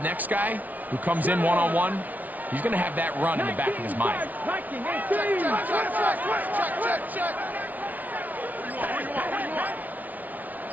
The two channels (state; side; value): late; left; 0.077 ms